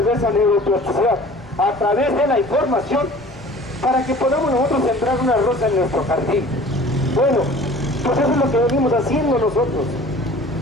neuroplasticidad a través de la información para que podamos nosotros sembrar una rosa en nuestro jardín. Bueno, pues eso es lo que venimos haciendo nosotros.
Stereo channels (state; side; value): normal; both; correlation 0.46